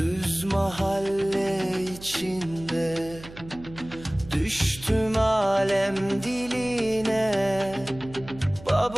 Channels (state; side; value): noise; right; hum, 17 dB below the sound